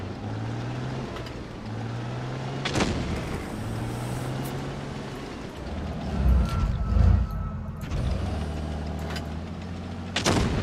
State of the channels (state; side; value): identical; both; correlation 1.00